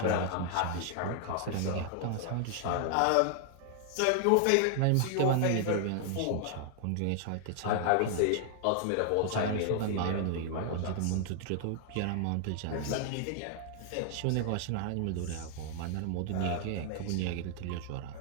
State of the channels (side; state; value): both; different; correlation 0.00